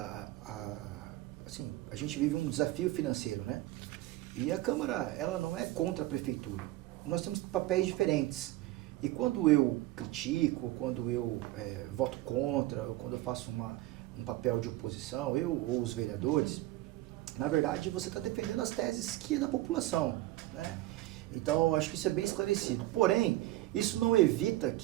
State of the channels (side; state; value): left; quieter; 17.0 dB